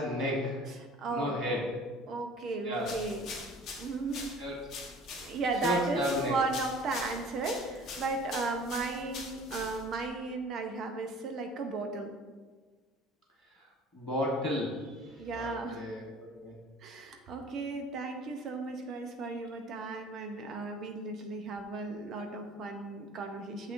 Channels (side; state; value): both; normal; correlation 0.47